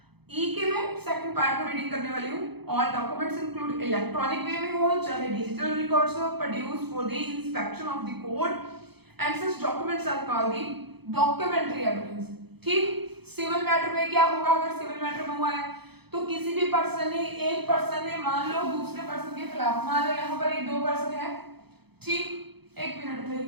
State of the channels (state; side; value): late; left; 0.98 ms